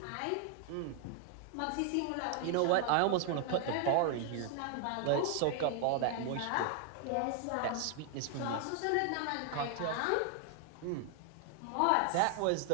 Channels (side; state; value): both; different; correlation 0.00